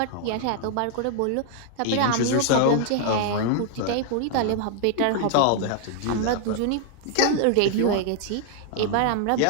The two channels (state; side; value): different; both; correlation 0.00